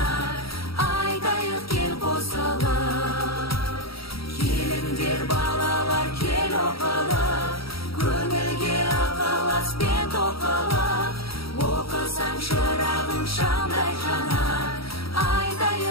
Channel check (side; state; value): right; late; 0.75 ms